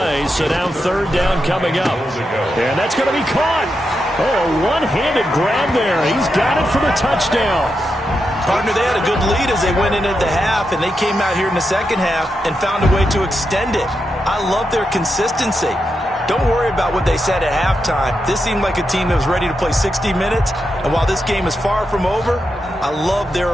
so now 3rd down coming up. And that's going to be caught. Oh, a one-handed grab there. He's got it for the touchdown. Partner, they had a good lead as they went in at the half, and they came out here in the second half and found a way to extend it. I love their consistency. Don't worry about what they said at halftime. This seemed like a team that was ready to play 60 minutes, and while this game is far from over, I love their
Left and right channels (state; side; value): normal; both; correlation 0.86